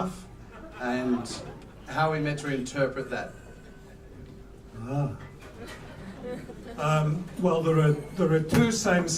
and how are we meant to interpret that? Well, there are two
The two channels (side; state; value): both; identical; correlation 1.00